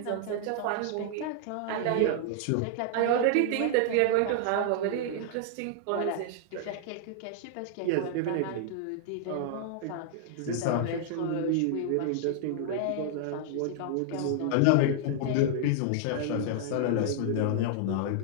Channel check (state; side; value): different; both; correlation -0.01